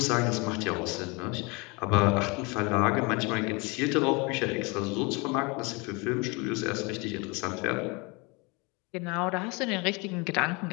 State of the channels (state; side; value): quieter; right; 28.4 dB